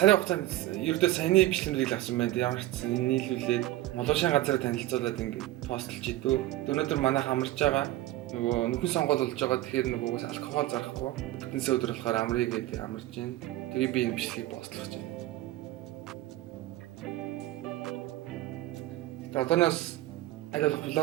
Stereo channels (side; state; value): left; quieter; 16.1 dB